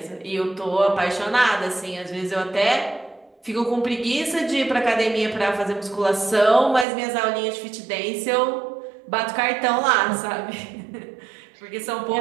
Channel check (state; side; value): drops out; left; at 6.9 s